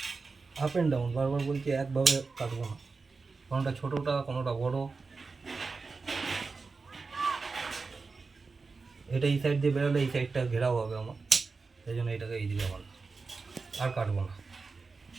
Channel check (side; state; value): left; quieter; 4.3 dB